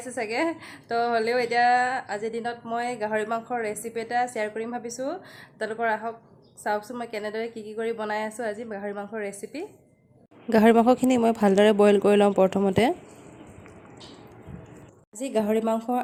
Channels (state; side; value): identical; both; correlation 1.00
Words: सगे तो हलेও एटा আজি दिনত মই গাহৰি মাংসৰ ৰেচিপি এটা শেয়াर কৰিম ভাবিছো তলকৰ আহক চাওকছো মই কেনেদৰে কি কৰি বনাই আছো আজি গাহৰি মাংসৰ ৰেচিপি গাহৰি মাংসখিনি মই ভালদৰে বইল কৰি লম প্ৰথমতে আজি গাহৰি মাংস